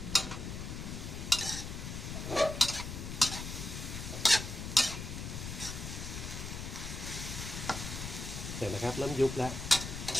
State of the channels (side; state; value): left; noise; rumble, 6 dB below the sound